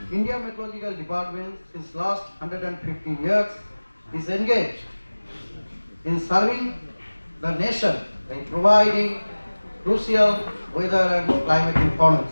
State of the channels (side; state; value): both; inverted; correlation -1.00